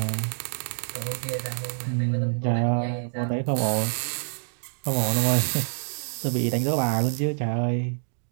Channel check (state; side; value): silent; left; digital silence